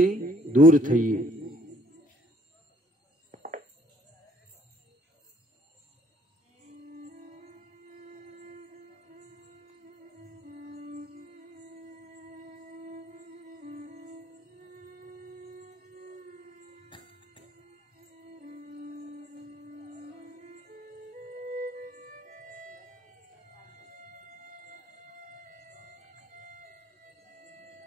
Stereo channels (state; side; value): normal; both; correlation 0.61